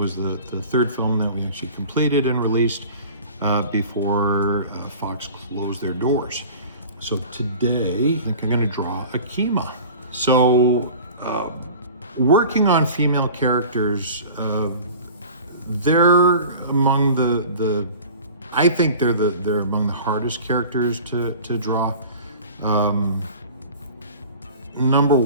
the third film that we actually completed and released before Fox closed their doors. So today, I think I'm gonna draw Akima. So working on female characters, they're among I think they're among the hardest characters to draw. Number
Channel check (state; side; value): inverted; both; correlation -0.41